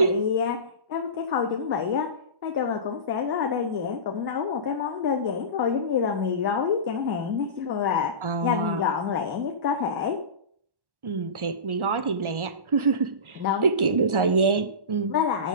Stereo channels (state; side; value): late; left; 1.4 ms